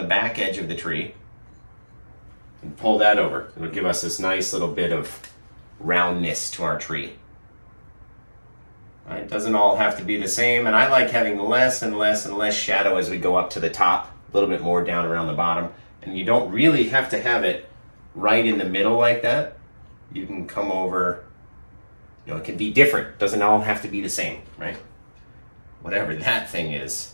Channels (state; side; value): inverted; both; correlation -1.00